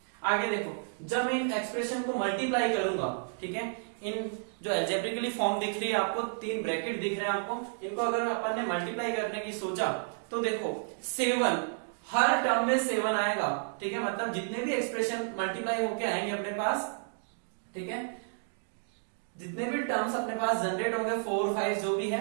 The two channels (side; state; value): left; silent; digital silence